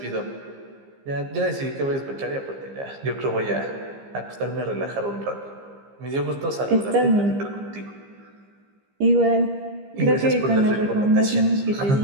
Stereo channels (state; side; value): late; left; 15 ms